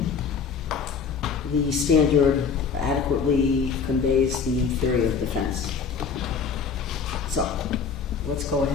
the standard adequately conveys the theory of defense. So, let's go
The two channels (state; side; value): quieter; right; 5.9 dB